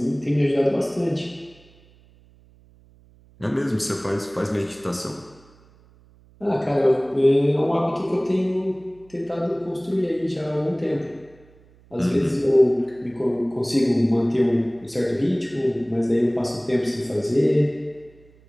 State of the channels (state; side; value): noise; right; hum, 28 dB below the sound